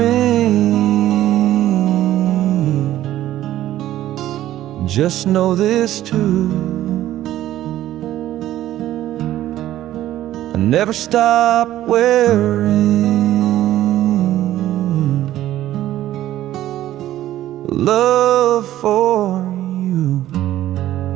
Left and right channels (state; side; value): quieter; left; 13.6 dB